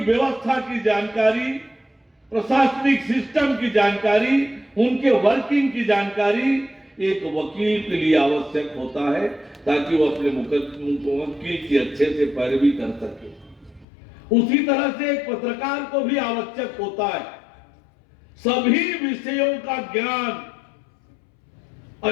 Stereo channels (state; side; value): drops out; right; at 13.9 s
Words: की जानकारी, प्रशासनिक सिस्टम की जानकारी, उनके वर्किंग की जानकारी एक वकील के लिए आवश्यक होता है ताकि वो अपने मुवक्किल की अच्छे से पैरवी कर सके। उसी तरह से एक पत्रकार को भी आवश्यक होता है। सभी विषयों का ज्ञान,